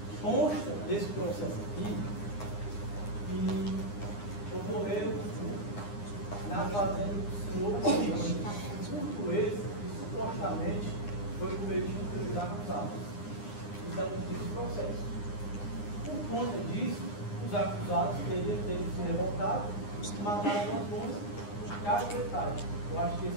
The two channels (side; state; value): right; late; 9.8 ms